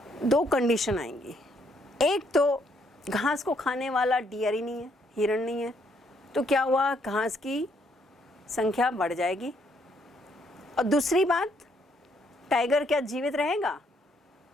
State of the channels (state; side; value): normal; both; correlation 0.71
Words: दो कंडीशन आएंगी। एक तो घास को खाने वाला डियर ही नहीं है, हिरण नहीं है, तो क्या हुआ? घास की संख्या बढ़ जाएगी। और दूसरी बात, टाइगर क्या जीवित रहेगा?